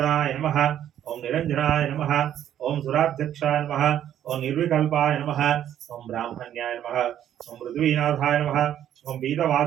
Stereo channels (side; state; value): left; quieter; 10.7 dB